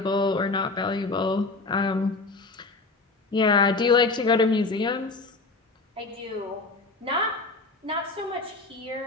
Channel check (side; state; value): right; quieter; 3.5 dB